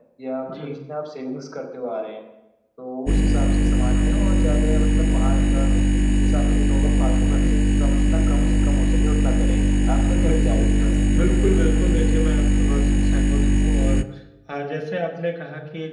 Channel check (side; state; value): both; identical; correlation 1.00